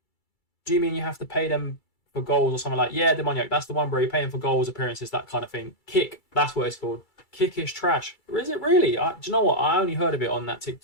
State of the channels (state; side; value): late; right; 2.3 ms